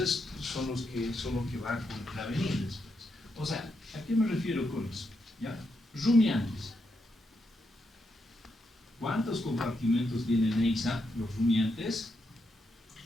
son los que van a contravenir después. O sea, ¿a qué me refiero con eso? ¿Ya? Rumiantes. ¿Cuántos compartimentos tienen EISA los rumiantes?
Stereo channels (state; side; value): normal; both; correlation 0.82